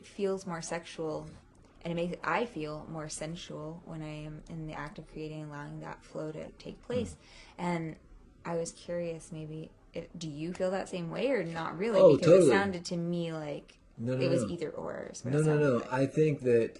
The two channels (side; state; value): both; identical; correlation 1.00